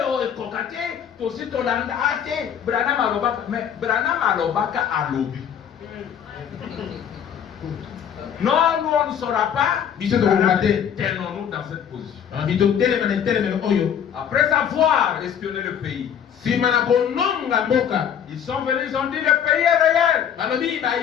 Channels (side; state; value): right; quieter; 8.6 dB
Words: ekokate tosi tolanda ate Branham alobaka, mais Branham alobaka alobi. Non, nous on ne saura pas. Tenons-nous dans cette position. Après avoir espionné le pays, ils sont venus, ils ont dit le pays est réel.